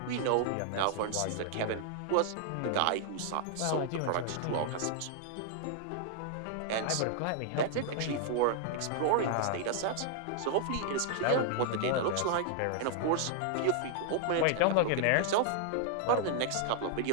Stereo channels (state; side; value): different; both; correlation -0.01